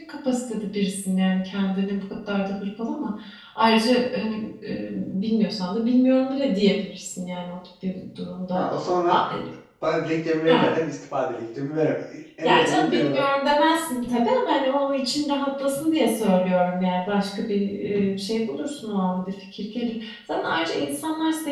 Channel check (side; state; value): both; identical; correlation 1.00